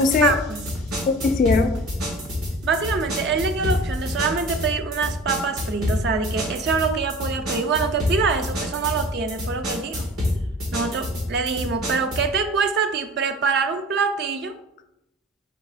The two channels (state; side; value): normal; both; correlation 0.40